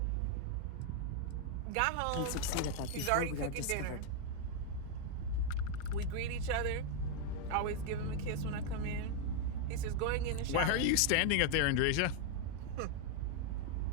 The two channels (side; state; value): both; different; correlation 0.00